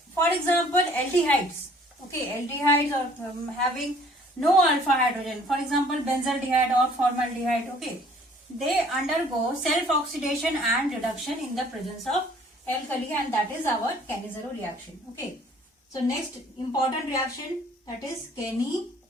for example, aldehydes. Okay, aldehydes are having no alpha hydrogen. For example, benzaldehyde or formaldehyde. Okay, they undergo self-oxidation and reduction in the presence of alkali, and that is our Cannizzaro reaction. Okay, so next important reaction, that is Cannizzaro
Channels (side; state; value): both; normal; correlation 0.56